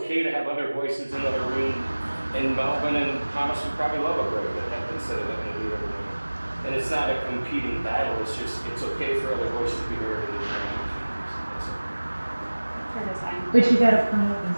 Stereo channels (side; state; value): both; inverted; correlation -1.00